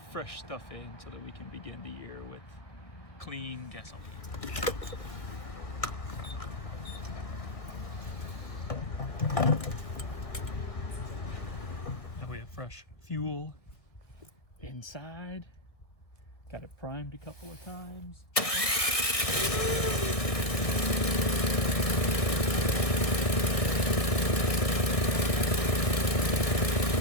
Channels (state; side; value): late; right; 1.6 ms